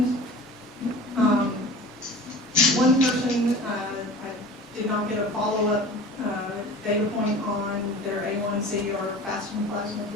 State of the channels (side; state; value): both; normal; correlation 0.39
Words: one person, I did not get a follow-up data point on their A1C or fasting plasma